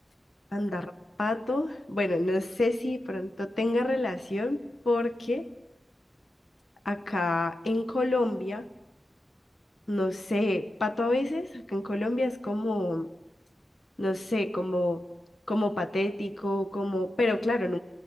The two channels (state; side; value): normal; both; correlation 0.90